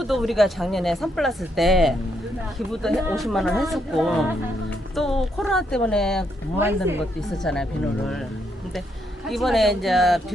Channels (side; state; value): both; normal; correlation 0.76